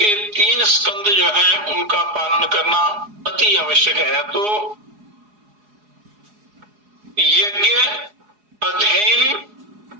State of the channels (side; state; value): left; late; 4.8 ms